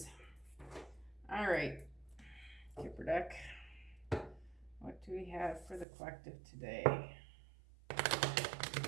All right, Kipper deck. What do we have for the collective today?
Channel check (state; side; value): drops out; left; at 5.9 s